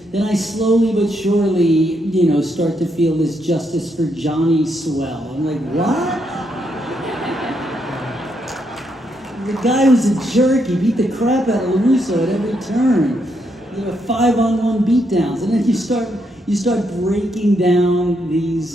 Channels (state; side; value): normal; both; correlation 0.78